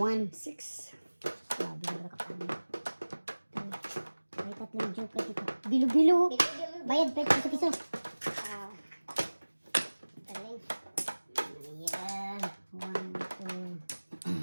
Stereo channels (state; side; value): inverted; both; correlation -1.00